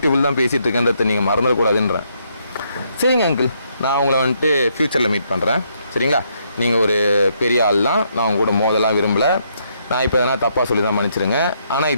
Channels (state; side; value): inverted; both; correlation -0.74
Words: தான் பேசிகிட்டு இருக்கேன்றதை நீங்கள் மறந்துடக்கூடாதுன்றேன். சரிங்க அங்கிள், நான் உங்களை வந்துட்டு ஃப்யூச்சரில் மீட் பண்ணுறேன், சரிங்களா? நீங்கள் ஒரு பெரிய ஆள் தான், நான் உங்க கூட மோதலாம் விரும்பலை. நான் இப்போ எதனா தப்பாக சொல்லி தான் மன்னிச்சிருங்க. ஆனால்